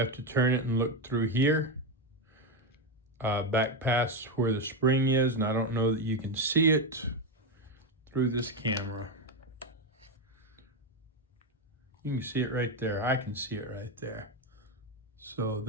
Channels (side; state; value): both; normal; correlation 0.10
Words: to turn it and look through here, back past where the spring is, and I don't know that you can see it through this camera. You can see it right there. I can see it right there. So